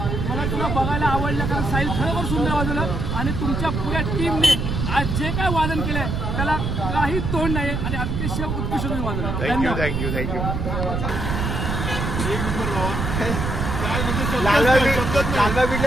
मला तुला बघायला आवडलं कारण साहिल खरोखर सुंदर वाजवलं आणि तुमच्या पुऱ्या टीमने आज जे काय वादन केलंय त्याला काही तोड नाही आणि अतिशय उत्कृष्ट तुम्ही वाजवलं. Thank you thank you thank you. लालबाग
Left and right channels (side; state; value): right; noise; rumble, 1 dB below the sound